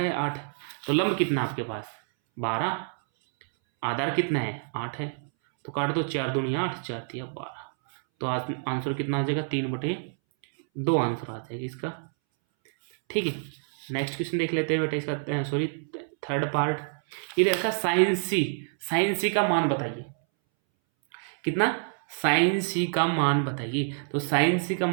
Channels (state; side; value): silent; left; 60 dB below the other